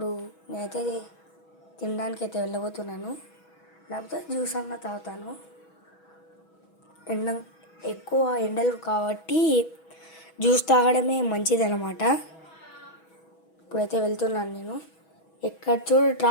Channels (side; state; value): right; late; 6.2 ms